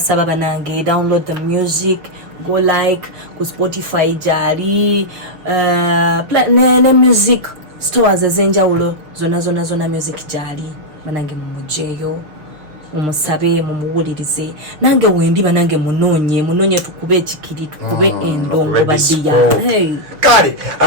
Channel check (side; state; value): left; late; 6.3 ms